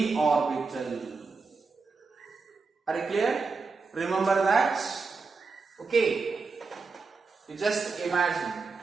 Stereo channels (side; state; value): left; quieter; 4.5 dB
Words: orbital. Are you clear? Remember that? Okay. You just imagine.